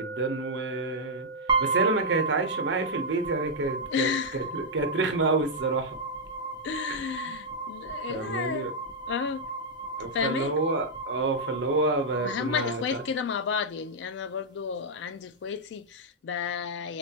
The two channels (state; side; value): normal; both; correlation -0.06